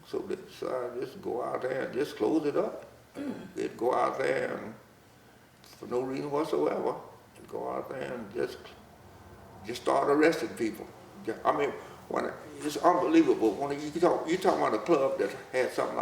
so they decided just go out there and just close it up. They'd go out there and, for no reason whatsoever, and go out there and just start arresting people. I mean, it's unbelievable. When you talk about a club that had something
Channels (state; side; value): identical; both; correlation 1.00